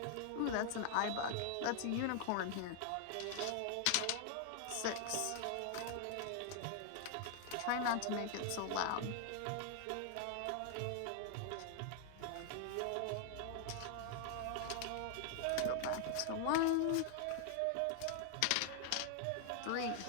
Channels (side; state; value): both; different; correlation 0.00